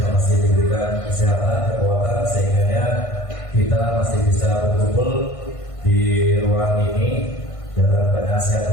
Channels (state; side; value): late; right; 1.5 ms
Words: masih diberikan kesehatan, kekuatan, sehingga kita masih bisa berkumpul di ruang ini dalam keadaan sehat